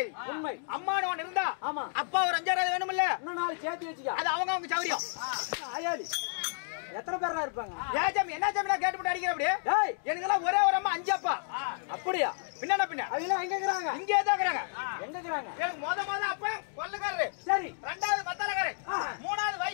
உண்மை அம்மானு ஒன்னு இருந்தா ஆமா அப்பா ஒரு 5000 வேணும்ல இன்னும் நாலு சேர்த்து வச்சுக்க அது அவங்க சௌரியம் ஆயாலி எத்தனை பேரா இருப்பாங்க ஏஜம் என்ன ஜம் நான் கேட்டு அடிக்கிற அப்படியே டேய் எனக்கெல்லாம் ஒரே ஒரு அம்மா 5 அப்பா அப்படியே பின்ன பின்ன அவங்க எங்க இருக்கறாங்க இங்கே தான் இருக்கறாங்க எங்க இருக்கறாங்க எனக்கு மொத அப்பா கொல்லக்காரரு சரி ரெண்டாவது மத்தலக்காரரு மூணாவது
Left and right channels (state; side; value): silent; right; digital silence